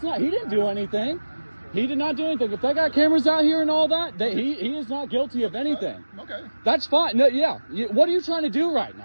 not. He didn't do anything. He did not do anything. If they got cameras out here and all that, he is not guilty of anything. Okay. That's fine. No, yeah. What are you trying to do right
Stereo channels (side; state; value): both; inverted; correlation -1.00